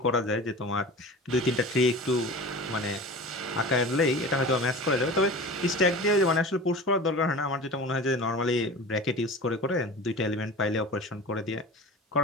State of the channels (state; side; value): normal; both; correlation 0.35